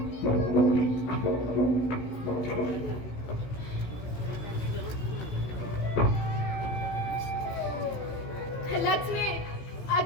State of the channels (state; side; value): late; right; 16 ms